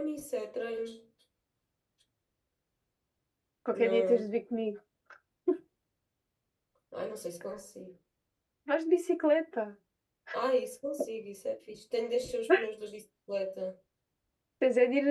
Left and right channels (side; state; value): both; identical; correlation 1.00